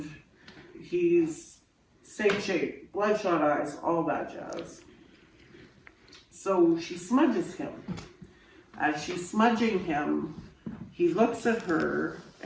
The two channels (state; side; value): identical; both; correlation 1.00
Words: he's same shape, bloodshot eyes, all that jazz. So she smudges him. As she's smudging him, he looks at her,